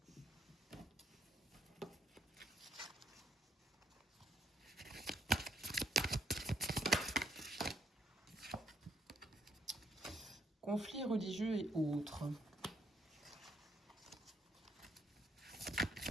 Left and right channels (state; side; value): normal; both; correlation 0.70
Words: Conflits religieux et autres.